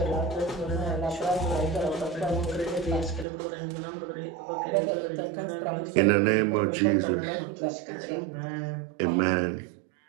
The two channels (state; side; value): drops out; left; at 3.2 s